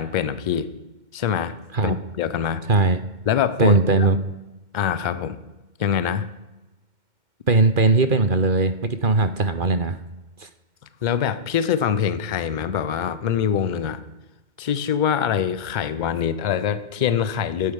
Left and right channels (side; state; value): left; late; 2.1 ms